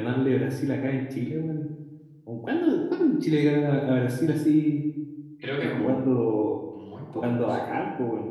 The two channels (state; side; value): identical; both; correlation 1.00